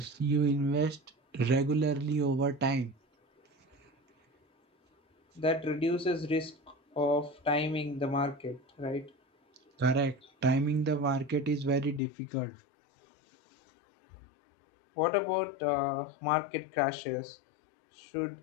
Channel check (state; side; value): drops out; right; at 12.0 s